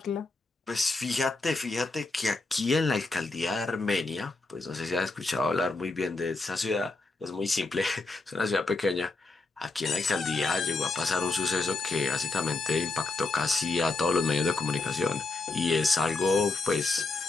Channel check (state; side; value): quieter; right; 3.4 dB